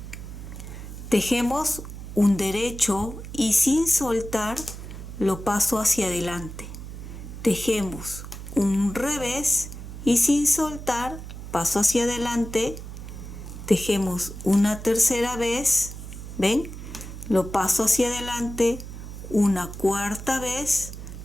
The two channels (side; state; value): right; noise; hum, 11 dB below the sound